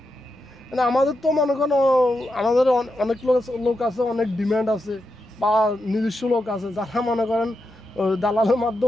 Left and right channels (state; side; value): normal; both; correlation 0.86